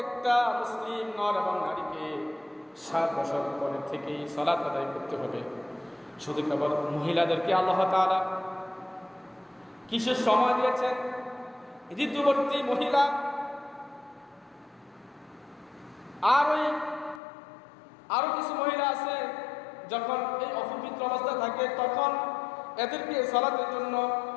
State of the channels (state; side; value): drops out; right; at 17.2 s